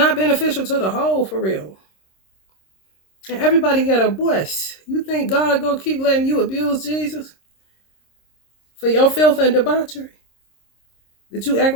beneficial to the whole, for real. And everybody got a voice. You think God gonna keep letting you abuse Jesus for your filth and debauchery that you act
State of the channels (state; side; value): late; right; 26 ms